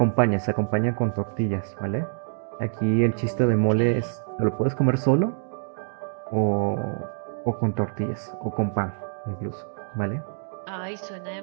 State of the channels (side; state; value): left; silent; 61 dB below the other